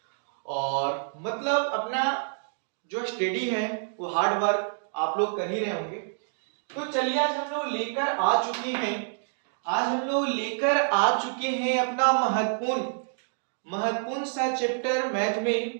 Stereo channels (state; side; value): silent; left; digital silence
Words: और मतलब अपना जो स्टडी है वो हार्ड वर्क आप लोग कर ही रहे होंगे। तो चलिए आज हम लोग लेकर आ चुके हैं अपना महत्वपूर्ण सा चैप्टर मैथ